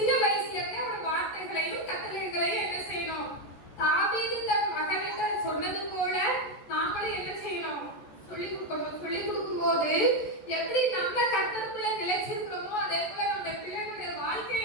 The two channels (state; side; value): late; right; 14 ms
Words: வயசுல இருந்தே அவரோட வார்த்தைகளையும் கட்டளைகளையும் என்ன செய்யணும்? தாவீது தன் மகனிட்ட சொன்னது போல நாமளும் என்ன செய்யணும்? சொல்லி கொடுக்கணும். சொல்லி கொடுக்கும்போது எப்படி நம்ம கர்த்தருக்குள்ள நிலைச்சிருக்கிறோமோ அதே போல நம்ம பிள்ளைகளுடைய வாழ்க்கையை